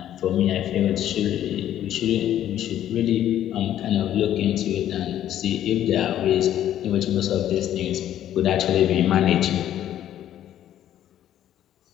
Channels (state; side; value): quieter; right; 11.5 dB